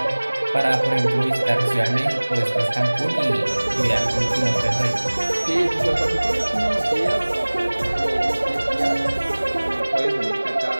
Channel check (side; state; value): both; inverted; correlation -1.00